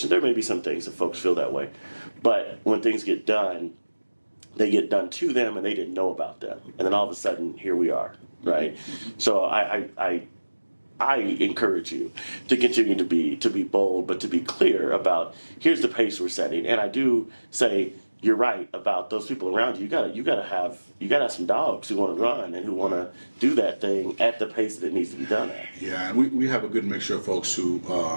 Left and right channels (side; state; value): both; inverted; correlation -1.00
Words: there may be some things that folks feel that way, but when things get done, they get done to them and they didn't know about them. And then all of a sudden, here we are, right? So I encourage you to continue to be bold, but to be clear about, here's the pace we're setting. And I do say, you're right about those people around you. You gotta have some dogs who want to run and who want to do that thing at the pace that it needs to be done at. Yeah, and we have a good mixture of folks who